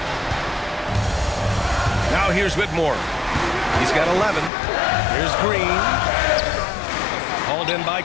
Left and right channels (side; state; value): right; drops out; at 4.5 s